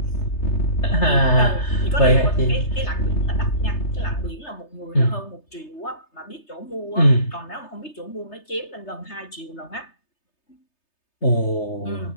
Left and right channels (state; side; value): late; right; 3.3 ms